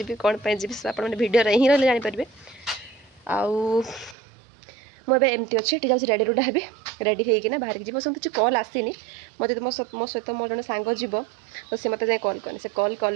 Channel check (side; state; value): left; drops out; at 4.2 s